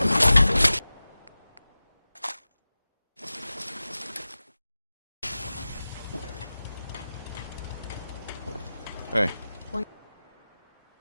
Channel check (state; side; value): inverted; both; correlation -0.96